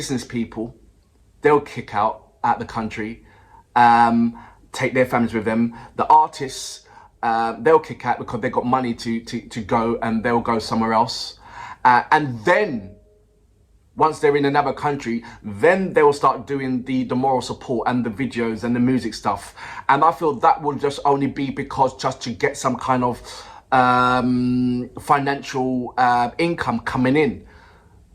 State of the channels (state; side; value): identical; both; correlation 1.00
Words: people. They'll kick out the country, take their families with them. The artists, they'll kick out because they've got money to go, and they'll go somewhere else. And then, once they're in another country, then they will start doing the moral support and the videos and the music stuff. And I feel that will just only be because just to get some kind of financial income coming in.